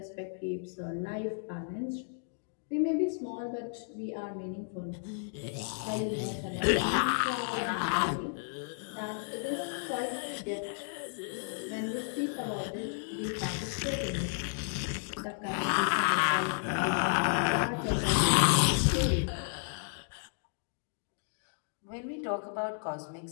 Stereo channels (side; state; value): right; silent; digital silence